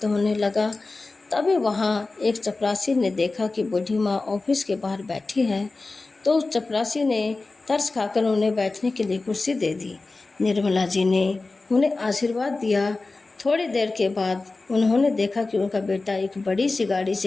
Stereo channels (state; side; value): quieter; right; 3.5 dB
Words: होने लगा। तभी वहाँ एक चपरासी ने देखा कि बूढ़ी माँ ऑफिस के बाहर बैठी है, तो उस चपरासी ने तरस खाकर उन्हें बैठने के लिए कुर्सी दे दी। निर्मला जी ने उन्हें आशीर्वाद दिया। थोड़ी देर के बाद उन्होंने देखा कि उनका बेटा एक बड़ी सी गाड़ी